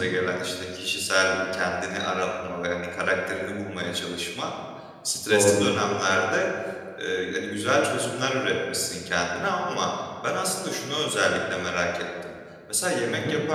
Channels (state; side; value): identical; both; correlation 1.00